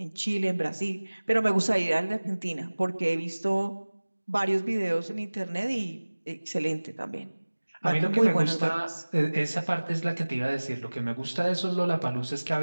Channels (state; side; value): inverted; both; correlation -1.00